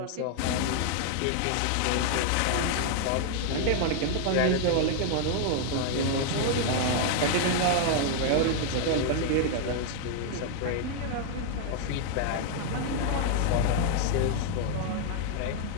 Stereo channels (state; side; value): different; both; correlation 0.00